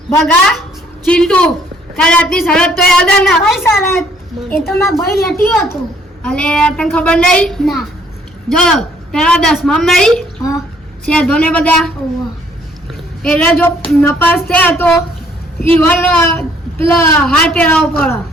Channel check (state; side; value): normal; both; correlation 0.63